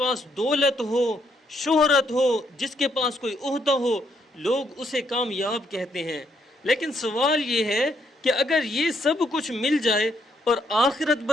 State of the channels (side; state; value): both; normal; correlation 0.74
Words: دولت ہو، شہرت ہو، جس کے پاس کوئی عہدہ ہو، لوگ اسے کامیاب کہتے ہیں۔ لیکن سوال یہ ہے کہ اگر یہ سب کچھ مل جائے اور آخرت